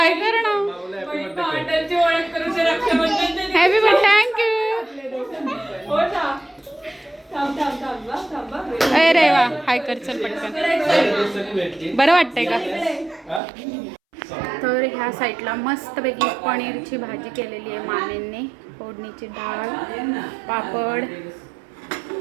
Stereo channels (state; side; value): drops out; left; at 13.4 s